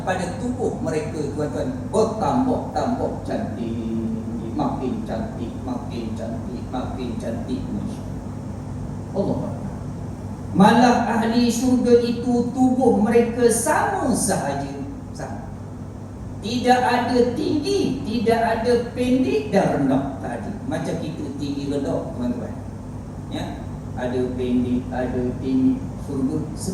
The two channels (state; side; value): identical; both; correlation 1.00